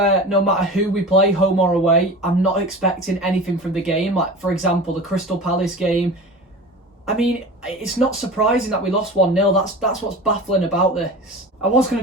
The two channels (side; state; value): both; normal; correlation 0.34